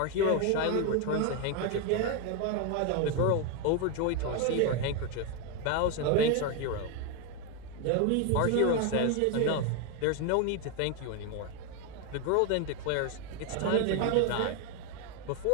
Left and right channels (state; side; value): different; both; correlation 0.01